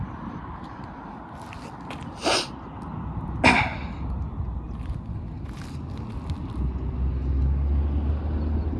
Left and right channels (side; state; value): both; identical; correlation 1.00